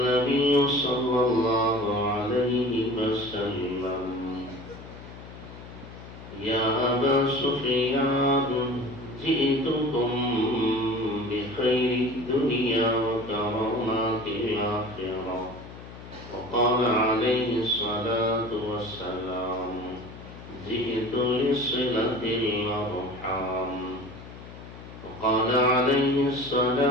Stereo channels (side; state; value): left; noise; hum, 15 dB below the sound